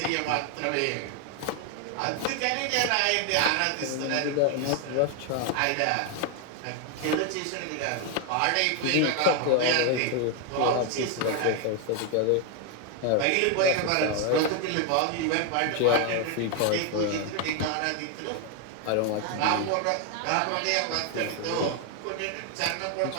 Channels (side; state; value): both; different; correlation 0.01